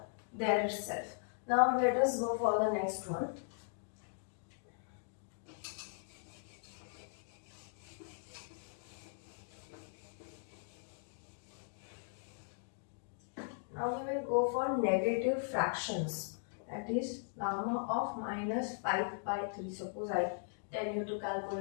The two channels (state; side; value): silent; right; digital silence